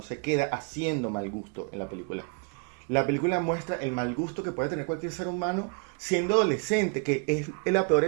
se queda haciendo mal gusto en la película. La película muestra el mal gusto que puede tener cualquier ser humano siendo adolescente, que es la peor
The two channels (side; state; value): left; quieter; 35.1 dB